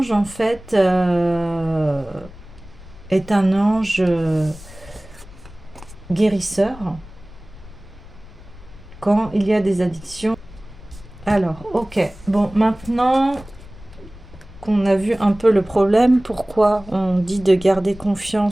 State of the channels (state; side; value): noise; left; rumble, 19 dB below the sound